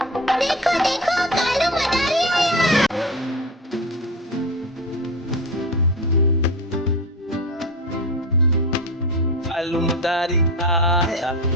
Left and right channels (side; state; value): both; normal; correlation 0.26